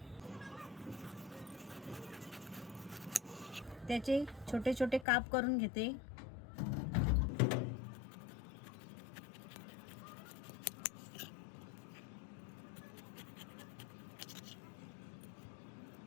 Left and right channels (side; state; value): right; drops out; at 5.1 s